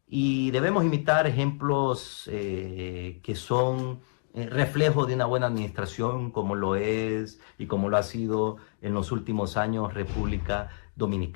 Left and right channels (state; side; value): silent; right; 59 dB below the other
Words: y debemos imitar ejemplos que son reflejo de una buena administración, como lo es y como lo ha sido en los últimos años República